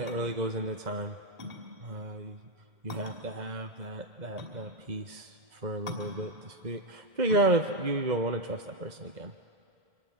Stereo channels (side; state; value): left; late; 2.0 ms